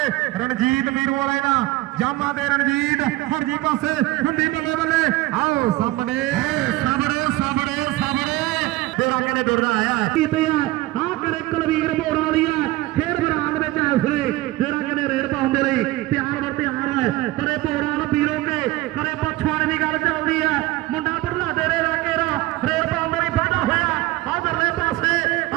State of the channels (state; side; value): quieter; left; 18.3 dB